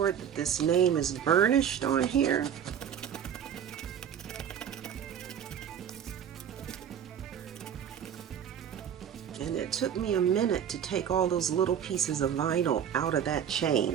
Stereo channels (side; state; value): left; quieter; 8.8 dB